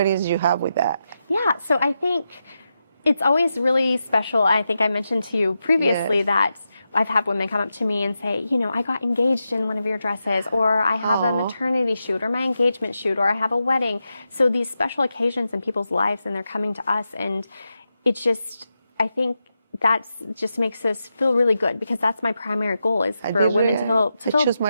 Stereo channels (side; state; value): both; inverted; correlation -0.88